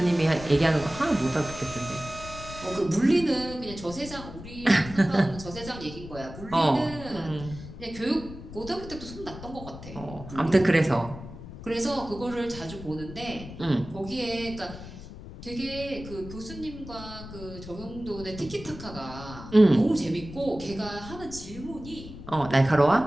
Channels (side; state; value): left; noise; rumble, 13 dB below the sound